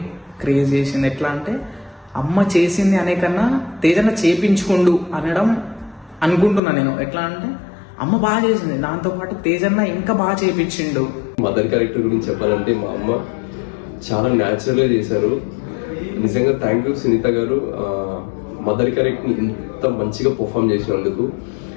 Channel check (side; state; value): right; drops out; at 6.6 s